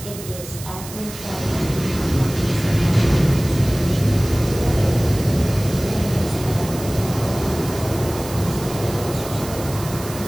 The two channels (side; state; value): right; noise; hiss, 13 dB below the sound